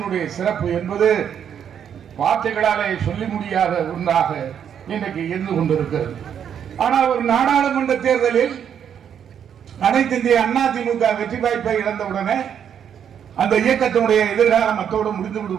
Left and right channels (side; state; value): left; quieter; 8.5 dB